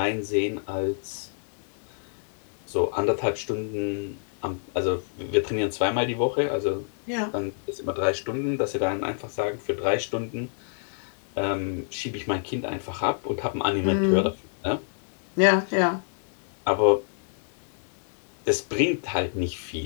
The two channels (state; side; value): silent; right; digital silence